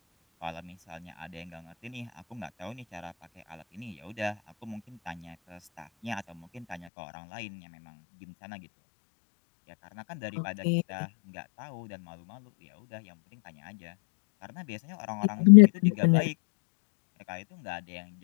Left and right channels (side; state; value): right; drops out; at 6.9 s